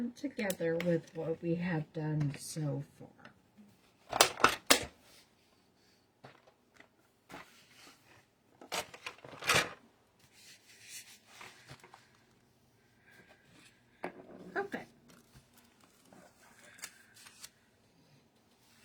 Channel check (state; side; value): identical; both; correlation 1.00